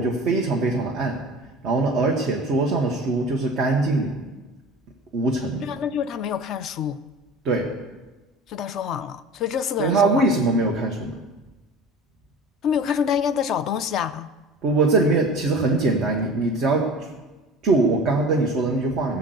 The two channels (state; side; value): normal; both; correlation 0.38